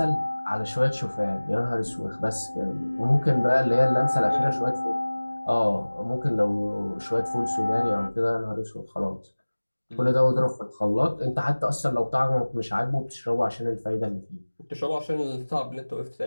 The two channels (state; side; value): inverted; both; correlation -1.00